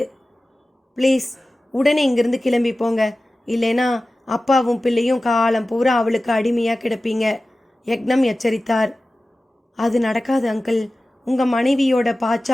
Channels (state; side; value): normal; both; correlation 0.96